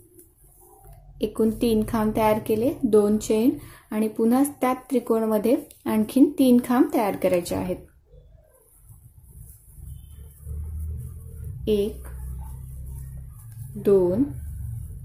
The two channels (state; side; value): identical; both; correlation 1.00